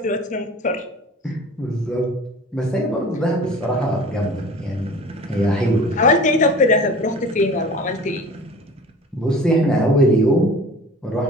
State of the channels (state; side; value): normal; both; correlation 0.42